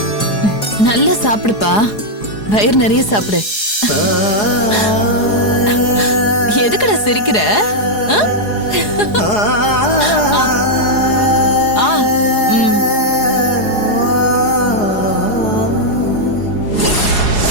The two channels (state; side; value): late; right; 4.8 ms